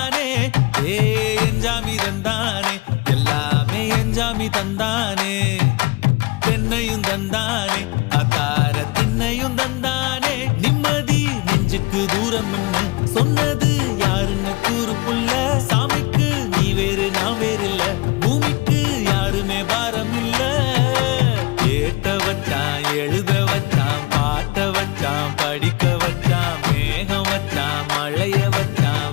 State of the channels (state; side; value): quieter; right; 24.3 dB